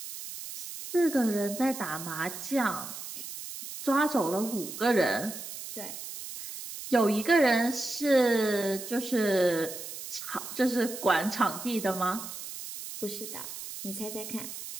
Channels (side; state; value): right; noise; hiss, 10 dB below the sound